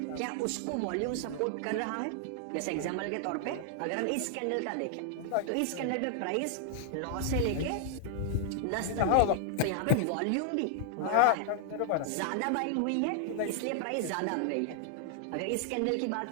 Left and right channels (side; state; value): both; different; correlation 0.00